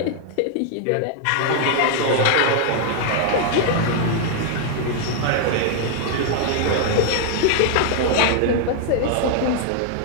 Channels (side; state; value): both; different; correlation 0.00